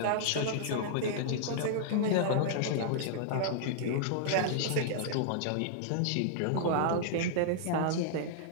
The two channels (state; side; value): different; both; correlation -0.01